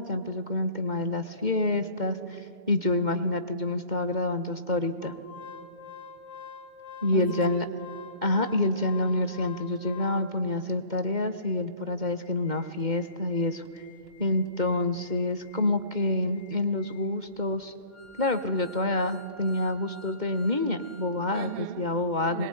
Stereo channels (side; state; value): left; late; 2.1 ms